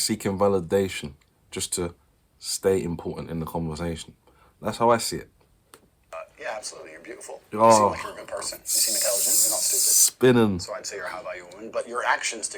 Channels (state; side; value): identical; both; correlation 1.00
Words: seeking validation just to stay important in the conversation. That's how I see it. yeah, absolutely. You're beautiful. Oh. You seem like you're a good person. You seem intelligent. You're not stupid. Spinning. So I'd say you're a high-value woman, but your actions